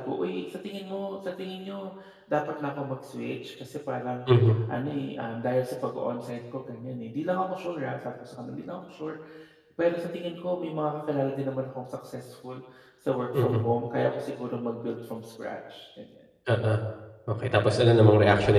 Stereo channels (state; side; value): identical; both; correlation 1.00